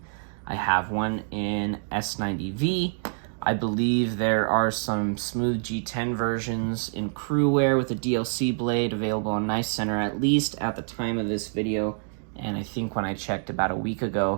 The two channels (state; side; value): silent; left; digital silence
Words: I have one in S90V. I believe there are some smooth G10 versions in crew wear with a DLC blade available on Knife Center, at least at the time of this video. And I think when I checked about a week